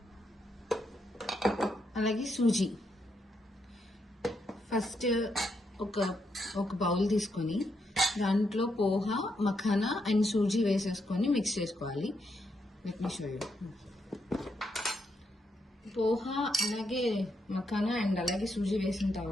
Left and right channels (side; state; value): both; normal; correlation 0.80